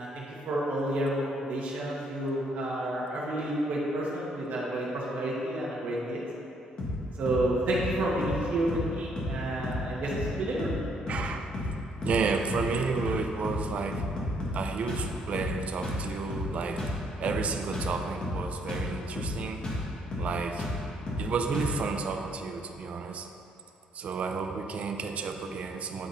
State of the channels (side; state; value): both; normal; correlation 0.68